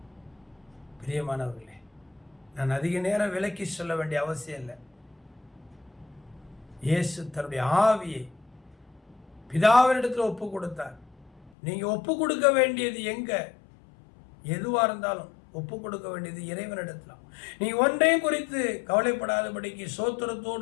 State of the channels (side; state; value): right; drops out; at 11.5 s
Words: பிரியமானவர்களே, நான் அதிக நேரம் விலக்கி சொல்ல வேண்டிய அவசியம் இல்லை. இயேசு தன்னுடைய ஆவியை பிதாவினிடத்தில் ஒப்பு கொடுத்தார். நீங்க ஒப்பு கொடுக்க வேண்டியது எங்க? எதுவா இருந்தாலும் ஒப்பு கொடுக்க வேண்டியது இறைவனிடத்தில். நீ ஒன்றையும் குறித்து கவலைப்படாதபடிக்கு